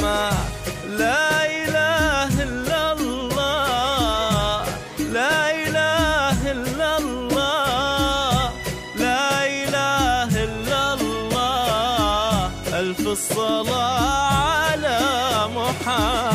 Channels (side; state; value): both; identical; correlation 1.00